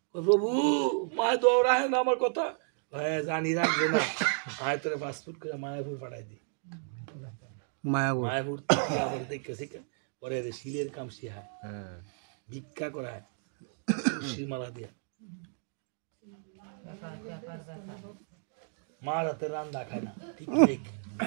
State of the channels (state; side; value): silent; left; 56 dB below the other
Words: প্রভু মায় দৌড়ায় না আমার কথা। জানি রাখবে না, আয় তোরে পাসপোর্ট করে মায়াপুর পাঠাই দি। মায়াপুর দেখেছি পরে শিলের কাম শিহায়, ভিক্ষা করায়, মালা দিয়া মার হাতে রান্না খায় না। ঠিক